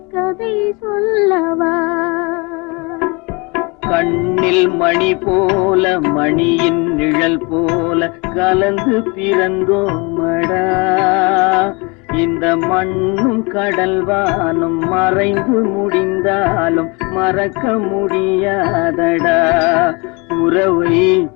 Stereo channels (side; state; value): right; quieter; 28.0 dB